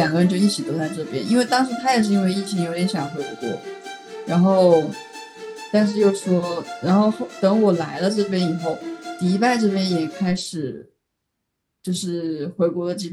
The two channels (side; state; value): both; identical; correlation 1.00